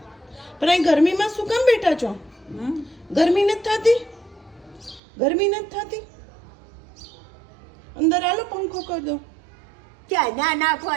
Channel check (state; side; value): drops out; left; at 5.0 s